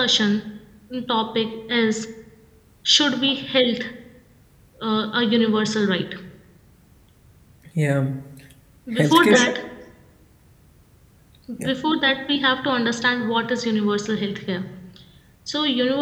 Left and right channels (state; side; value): identical; both; correlation 1.00